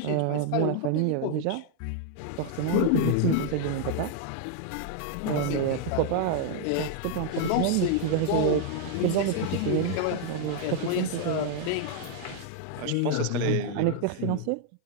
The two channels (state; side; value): different; both; correlation 0.00